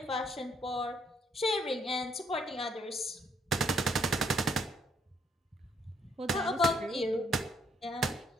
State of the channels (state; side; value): normal; both; correlation 0.68